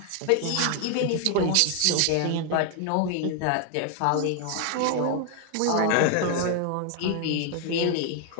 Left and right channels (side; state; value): both; different; correlation 0.00